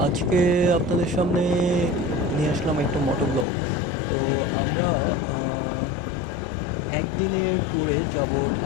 আজকে আপনাদের সামনে নিয়ে আসলাম একটা মোটো ব্লগ। তো আমরা একদিনের ট্যুরে যাব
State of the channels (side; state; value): right; drops out; at 3.5 s